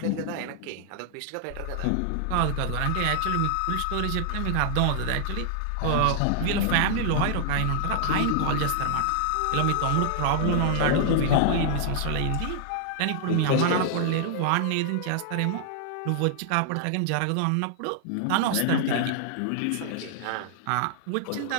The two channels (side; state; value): both; different; correlation -0.01